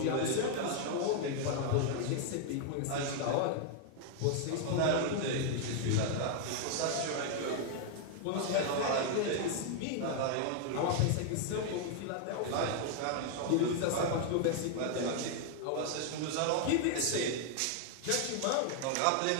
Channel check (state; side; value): different; both; correlation 0.00